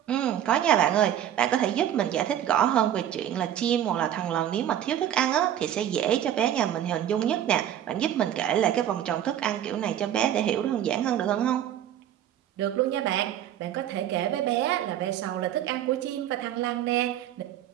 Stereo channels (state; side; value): quieter; left; 10.9 dB